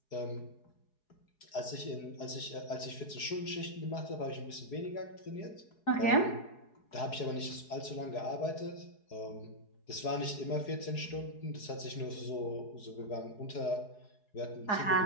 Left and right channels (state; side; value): late; right; 4.8 ms